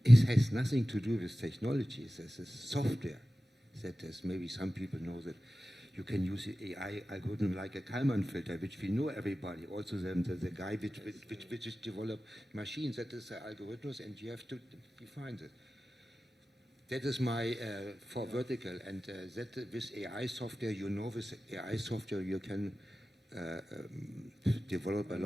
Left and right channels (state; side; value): normal; both; correlation 0.95